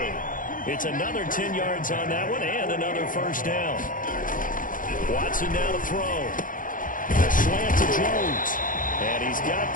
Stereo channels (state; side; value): late; right; 0.39 ms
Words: It's another 10 yards on that one and another first down. Watson now to throw. A slant to Jones. And he's got